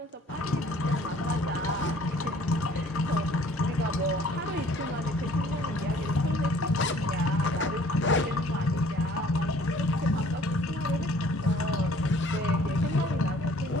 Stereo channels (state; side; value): normal; both; correlation 0.55